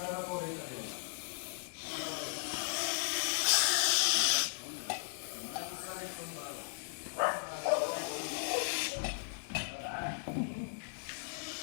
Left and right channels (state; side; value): silent; right; 53 dB below the other